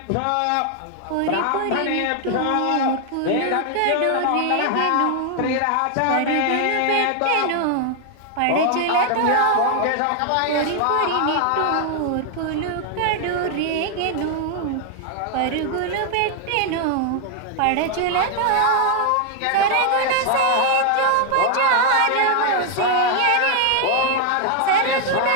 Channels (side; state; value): both; different; correlation 0.00